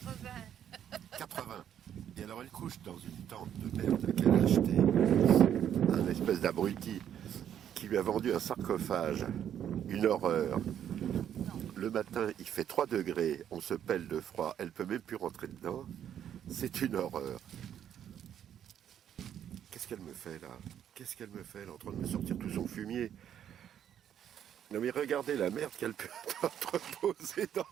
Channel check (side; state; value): left; quieter; 9.7 dB